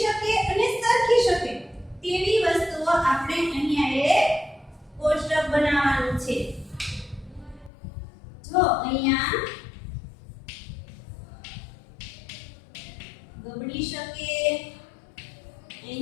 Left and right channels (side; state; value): right; drops out; at 7.7 s